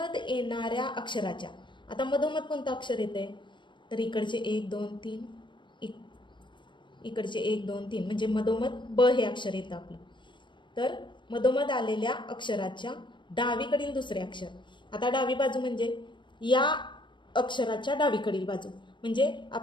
येणाऱ्या अक्षराच्या, आता मधोमध कोणतं अक्षर येते? तर इकडचे 1, 2, 3, इकडचे 1, 2, 3 म्हणजे मधोमध ब हे अक्षर येतं आपलं. तर मधोमध आलेल्या अक्षराच्या डावीकडील दुसरे अक्षर. आता डावी बाजू म्हणजे या अक्षराच्या डावीकडील बाजू, म्हणजे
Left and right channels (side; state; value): right; late; 0.23 ms